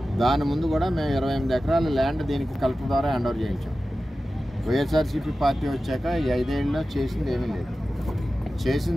దాని ముందు కూడా మేము 28 ఎకరాల ల్యాండ్ దీనికి కలెక్టర్ ద్వారా హ్యాండ్ ఓవర్ చేయించాం. వైఎస్ఆర్సీపీ పార్టీ వచ్చాక ఈ 5 ఏళ్ళలో చేసింది ఏమీ లేదు.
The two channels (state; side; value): normal; both; correlation 0.94